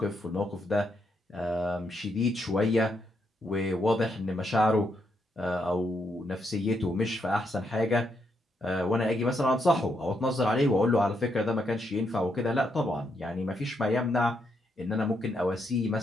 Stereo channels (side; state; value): both; normal; correlation 0.78